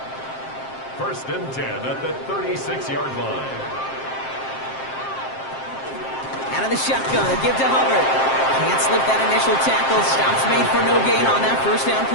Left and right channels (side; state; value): right; late; 7.6 ms